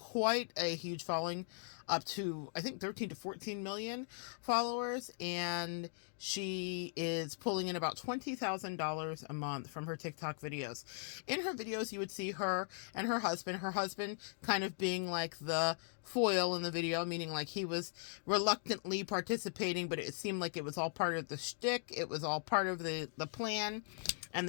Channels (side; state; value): right; silent; digital silence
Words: a huge following, up to, I think, 13 to 14 million followers. And she is pulling in about $20,000 a month from her TikTok videos. In her videos, you would see her and her husband kind of being like the foil in the video, meaning like he was reluctantly participating, but it seemed like it was all part of the shtick. It was all part of the plan and